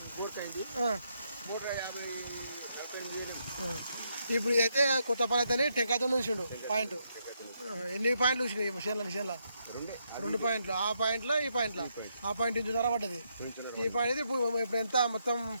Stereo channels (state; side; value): inverted; both; correlation -0.78